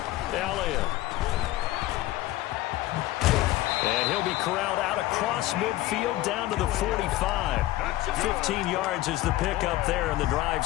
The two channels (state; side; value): quieter; right; 16.4 dB